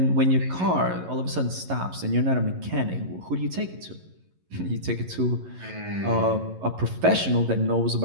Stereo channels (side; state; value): left; late; 11 ms